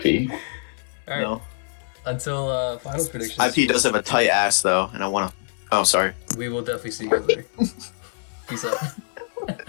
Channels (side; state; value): right; silent; 63 dB below the other